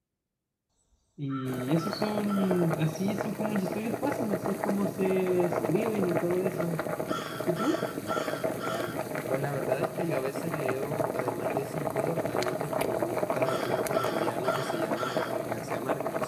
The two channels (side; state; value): both; identical; correlation 1.00